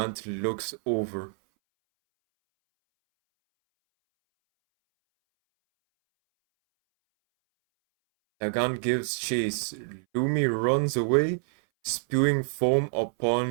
looks over. Nagant gives chase. Lumi runs away, spewing foam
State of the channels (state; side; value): silent; left; 60 dB below the other